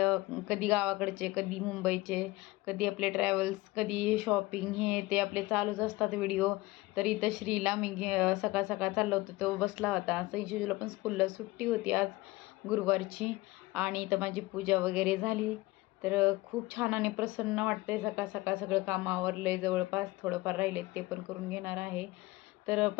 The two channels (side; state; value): right; quieter; 20.3 dB